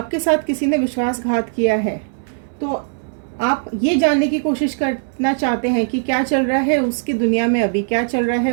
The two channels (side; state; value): left; silent; 66 dB below the other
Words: साथ किसी ने विश्वासघात किया है, तो आप ये जानने की कोशिश करना चाहते हैं कि क्या चल रहा है उसकी दुनिया में अभी, क्या चल रहा है